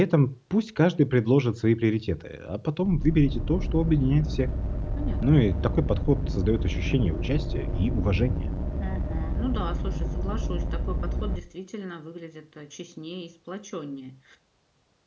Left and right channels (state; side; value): identical; both; correlation 1.00